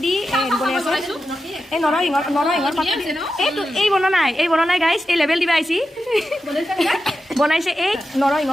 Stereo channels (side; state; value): both; normal; correlation 0.90